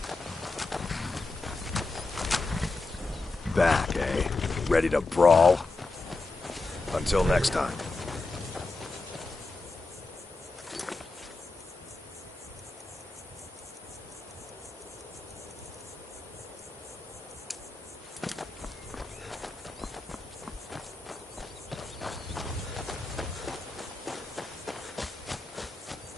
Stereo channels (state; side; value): quieter; right; 3.4 dB